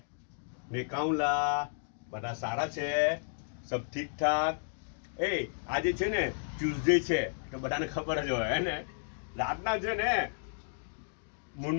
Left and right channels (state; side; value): silent; right; digital silence